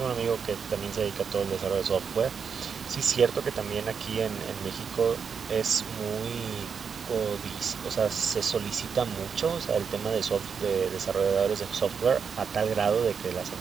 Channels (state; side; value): quieter; left; 6.3 dB